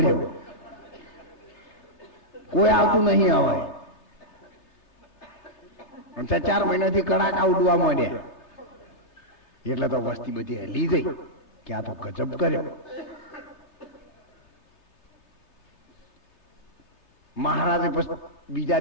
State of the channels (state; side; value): late; right; 3.3 ms